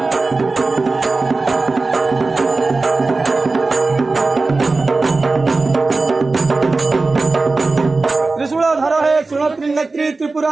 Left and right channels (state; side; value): quieter; left; 3.7 dB